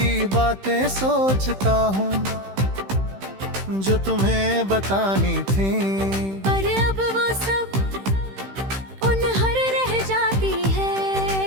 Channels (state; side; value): late; left; 15 ms